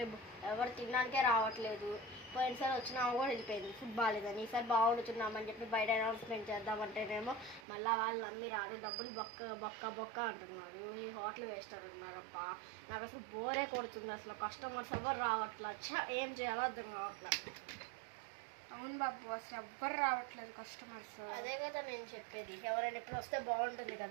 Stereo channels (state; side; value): drops out; left; at 7.7 s